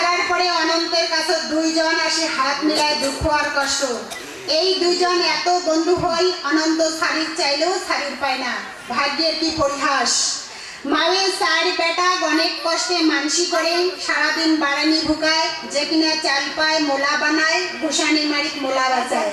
পরে অনন্তের কাছে দুইজন আসে হাত মিলায় দুঃখ আর কষ্ট। এই দুইজন এত বন্ধু হই অনন্ত শাড়ির চাইলেও শাড়ির পায় না। ভাগ্যের কি পরিহাস। মায়ের চার বেটা অনেক কষ্টে মানসি করে সারাদিন বাড়ানি ভুকায়, যে কিনা চাল পায় মোলা বানায়, গোসানি মারিক মোলা বাজায়।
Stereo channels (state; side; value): identical; both; correlation 1.00